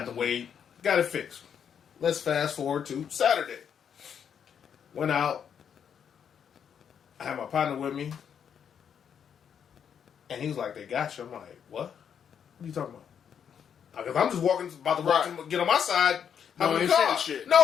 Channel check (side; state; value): right; quieter; 7.9 dB